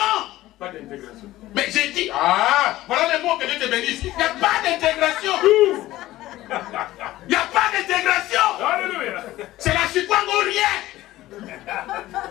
Pas d'intégration. Mais j'ai dit, voilà les mots que Dieu te bénisse. Il n'y a pas d'intégration. Il n'y a pas d'intégration. Alléluia. C'est la chikwame ou rien.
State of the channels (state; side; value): quieter; right; 16.1 dB